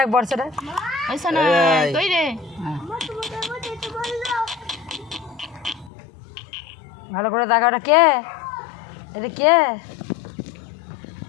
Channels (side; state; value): right; drops out; at 5.9 s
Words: বর্ষা ডাক কই রে ভালো করে টাকা ওটা কে এটা কে